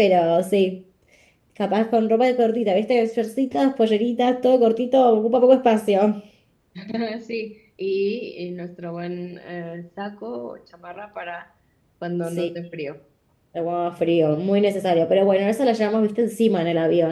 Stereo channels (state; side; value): identical; both; correlation 1.00